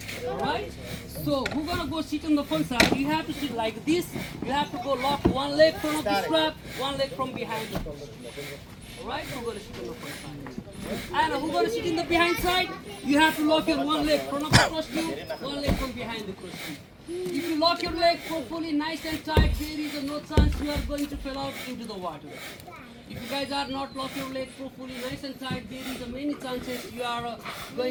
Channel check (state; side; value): identical; both; correlation 1.00